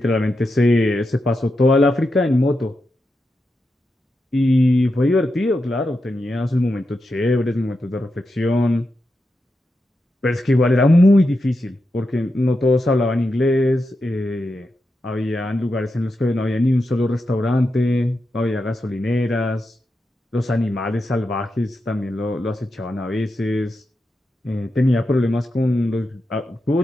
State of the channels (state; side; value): normal; both; correlation 0.88